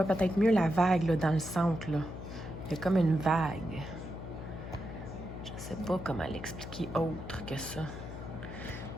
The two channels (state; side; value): noise; left; hum, 9 dB below the sound